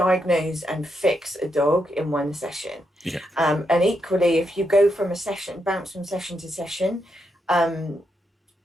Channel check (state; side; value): normal; both; correlation 0.82